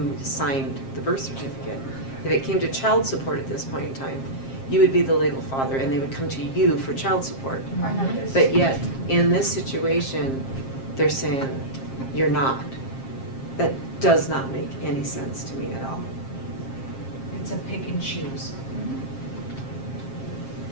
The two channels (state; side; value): late; right; 7.5 ms